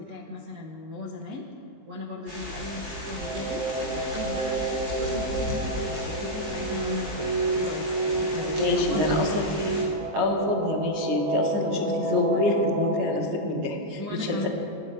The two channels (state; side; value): late; left; 20 ms